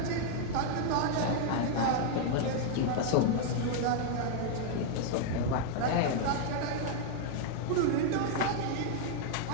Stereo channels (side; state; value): both; different; correlation -0.01